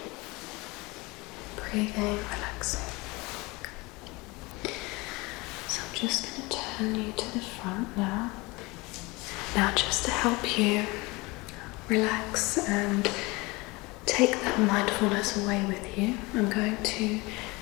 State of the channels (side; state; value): right; quieter; 24.1 dB